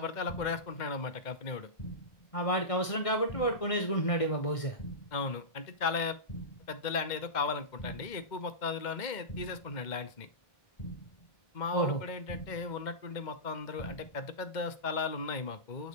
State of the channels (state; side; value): late; right; 1.6 ms